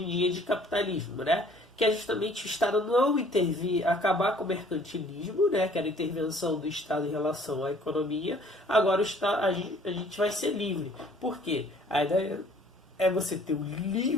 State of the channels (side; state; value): both; normal; correlation 0.56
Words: em dia de capitalismo, né? Que é justamente o Estado não intervir, acabar com o mercantilismo, né? Que era a intervenção do Estado em relação à economia. Agora a gente vai ser livre. Por quê? A ideia é você ter o